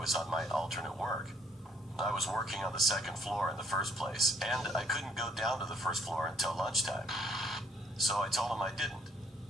on my alternate work. I was working on the second floor in the first place, and I couldn't go down to the first floor until lunchtime. So I told him I didn't.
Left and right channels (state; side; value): normal; both; correlation 0.65